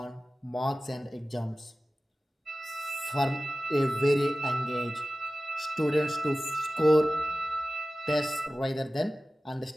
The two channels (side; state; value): both; normal; correlation 0.96